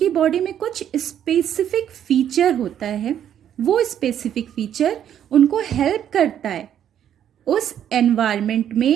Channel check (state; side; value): quieter; left; 9.9 dB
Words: बॉडी में कुछ स्पेसिफिक फीचर होता है, वो स्पेसिफिक फीचर उनको हेल्प करता है उस एनवायरनमेंट